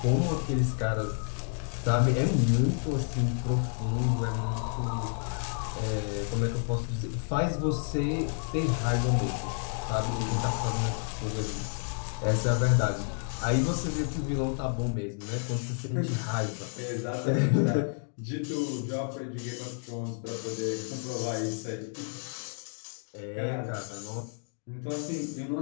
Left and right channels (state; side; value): silent; right; 58 dB below the other